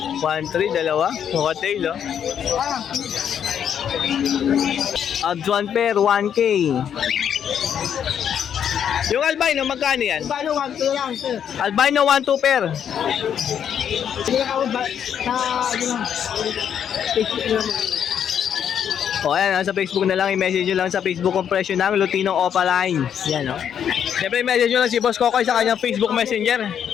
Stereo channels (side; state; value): right; quieter; 8.7 dB